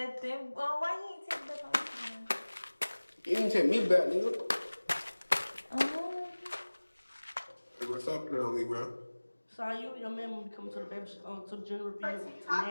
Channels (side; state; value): both; inverted; correlation -1.00